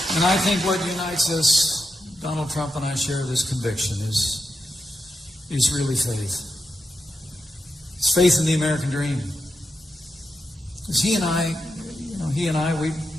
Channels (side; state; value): both; normal; correlation 0.87